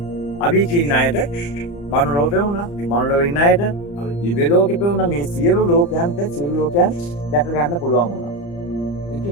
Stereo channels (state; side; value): late; right; 35 ms